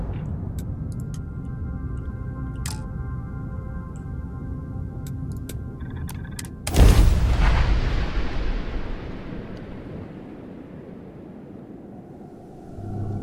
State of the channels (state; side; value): identical; both; correlation 1.00